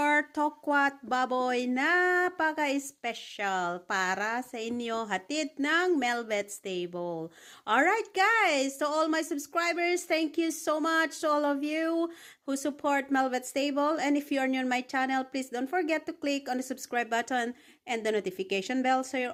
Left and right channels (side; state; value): both; identical; correlation 1.00